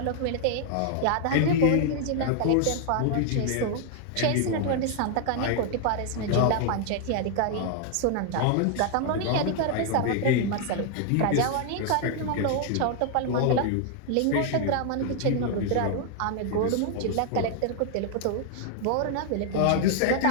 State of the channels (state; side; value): different; both; correlation 0.00